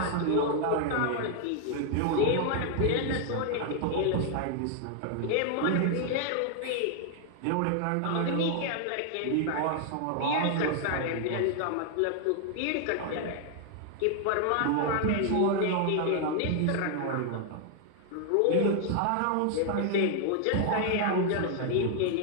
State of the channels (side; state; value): both; different; correlation 0.00